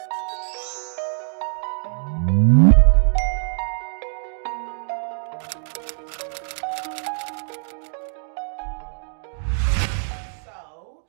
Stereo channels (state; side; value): silent; left; 63 dB below the other